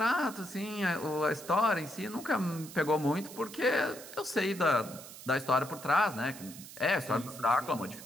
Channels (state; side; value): noise; right; hiss, 15 dB below the sound